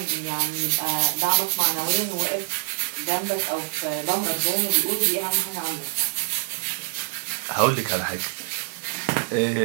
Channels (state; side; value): silent; left; 62 dB below the other